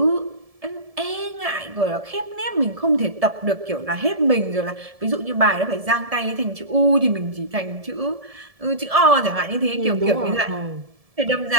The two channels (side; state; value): left; late; 1.7 ms